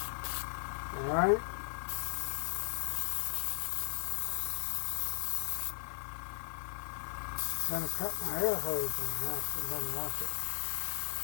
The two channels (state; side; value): silent; right; 53 dB below the other